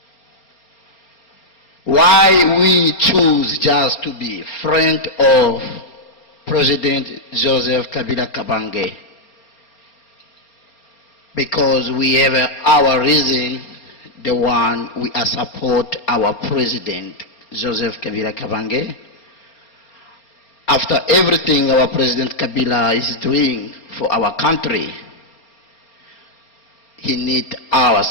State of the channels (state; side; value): late; right; 4.4 ms